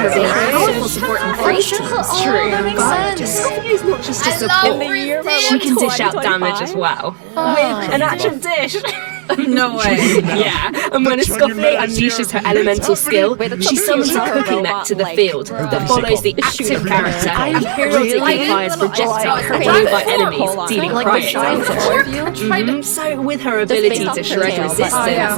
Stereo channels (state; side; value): silent; left; digital silence